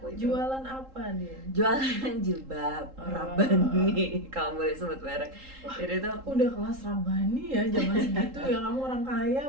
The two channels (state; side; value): late; left; 3.8 ms